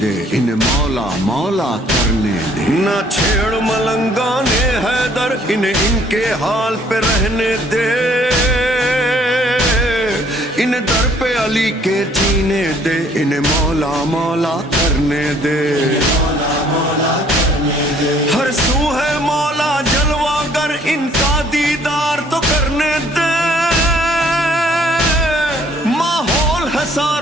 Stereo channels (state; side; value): normal; both; correlation 0.61